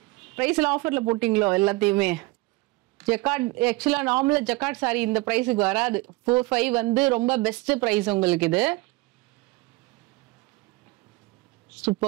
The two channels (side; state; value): left; quieter; 22.8 dB